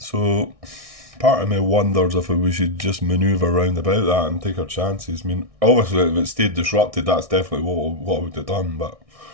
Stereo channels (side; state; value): left; late; 1.6 ms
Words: part of me wonders if we should just manoeuvre around about that and take our chances. I mean, obviously, if it stayed disrupted, that's definitely what I would have done, but...